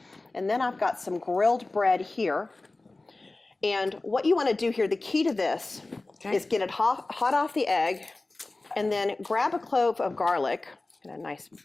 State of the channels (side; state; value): right; quieter; 3.1 dB